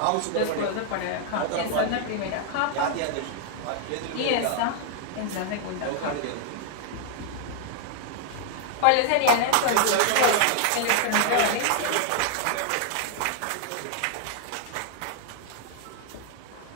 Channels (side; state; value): both; different; correlation 0.00